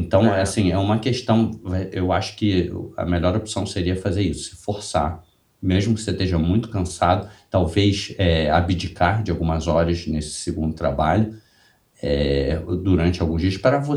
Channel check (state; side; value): identical; both; correlation 1.00